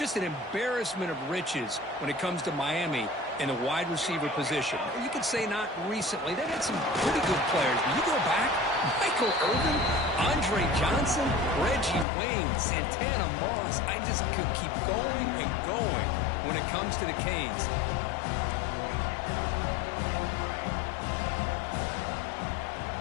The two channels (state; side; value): drops out; right; at 12.1 s